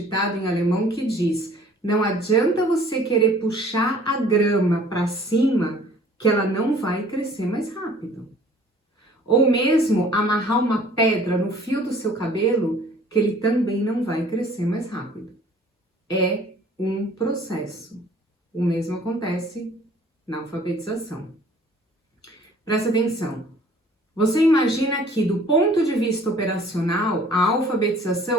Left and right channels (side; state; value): both; normal; correlation 0.53